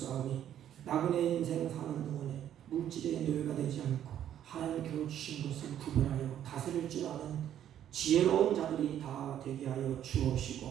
나그네 인생 사는 동안에 물질의 노예가 되지 않고 하나님께로 주신 것을 구별하여 다스릴 줄 아는 지혜로운 자들이 다 되게 하여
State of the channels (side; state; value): left; quieter; 10.6 dB